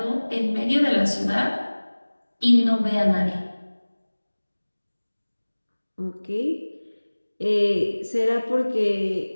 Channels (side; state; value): both; inverted; correlation -1.00